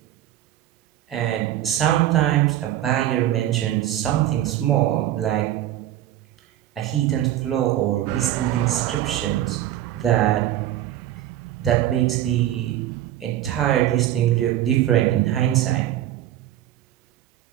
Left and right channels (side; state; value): left; quieter; 12.8 dB